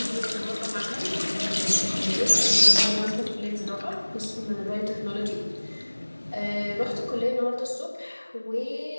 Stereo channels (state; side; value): inverted; both; correlation -1.00